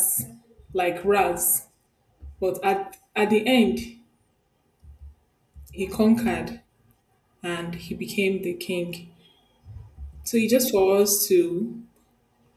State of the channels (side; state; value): both; identical; correlation 1.00